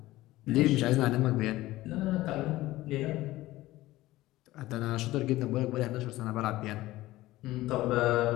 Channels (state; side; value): quieter; right; 17.2 dB